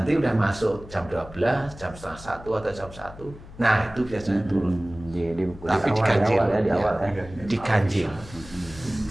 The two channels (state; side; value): noise; left; hum, 17 dB below the sound